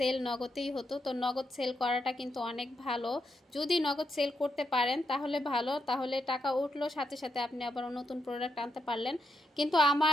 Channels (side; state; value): both; normal; correlation 0.82